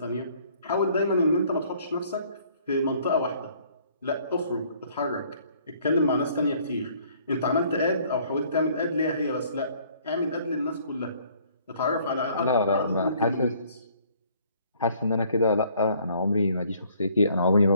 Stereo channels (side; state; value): both; inverted; correlation -0.60